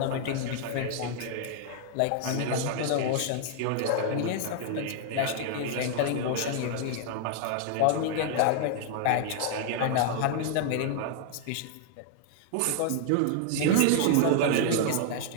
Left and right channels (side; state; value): both; different; correlation 0.00